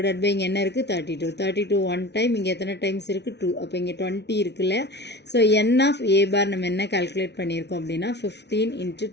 பை இங்கே என்ன இருக்குது, 32 ஒன் டைம், இங்கே எத்தனை டைம்ஸ் இருக்குது, 2. அப்போ இங்கே 20 இருக்குல்ல. So N of A bar நம்ம என்ன கால்குலேட் பண்ணியிருக்கோம் அப்படின்னா 15 into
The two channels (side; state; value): right; late; 0.50 ms